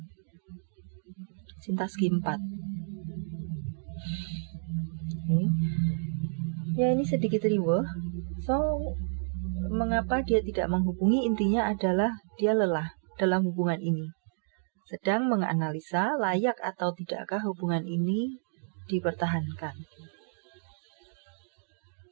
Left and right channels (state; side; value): silent; left; digital silence